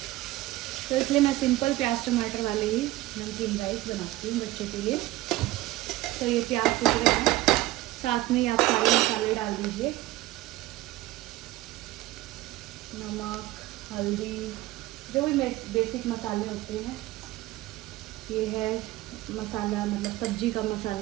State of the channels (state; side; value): quieter; left; 17.3 dB